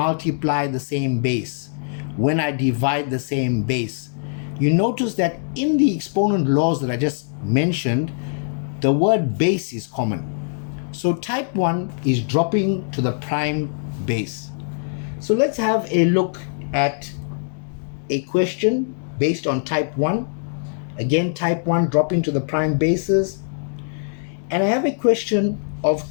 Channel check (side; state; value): right; silent; digital silence